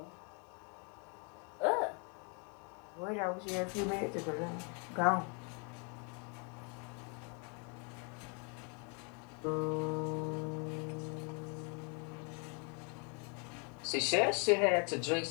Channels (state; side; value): quieter; right; 36.6 dB